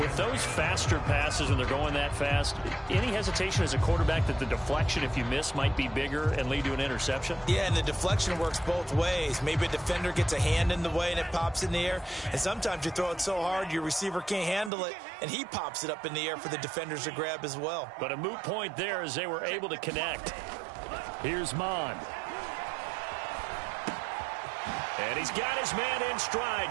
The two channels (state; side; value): drops out; left; at 14.7 s